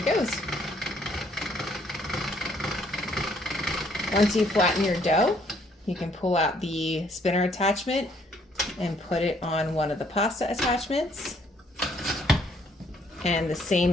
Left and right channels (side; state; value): both; normal; correlation 0.66